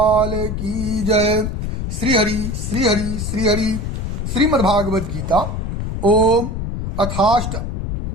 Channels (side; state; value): left; noise; rumble, 3 dB below the sound